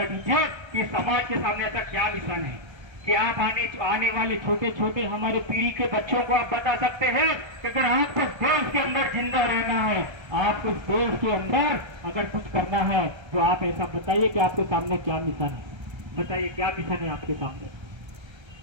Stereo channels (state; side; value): late; left; 1.3 ms